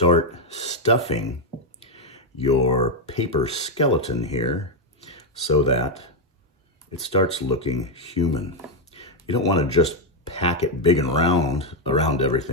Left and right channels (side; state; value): both; normal; correlation 0.02